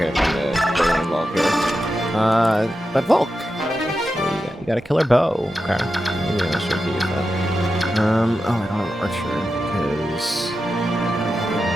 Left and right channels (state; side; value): normal; both; correlation 0.90